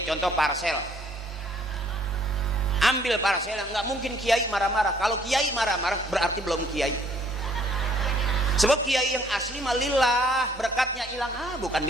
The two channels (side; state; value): both; normal; correlation 0.62